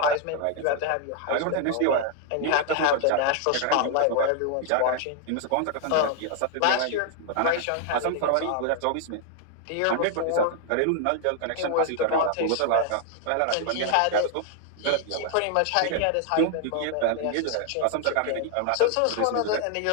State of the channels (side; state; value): both; different; correlation 0.00